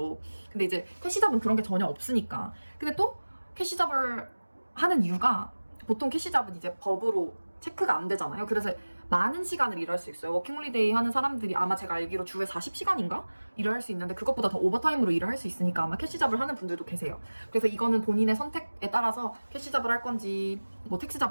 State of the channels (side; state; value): both; inverted; correlation -1.00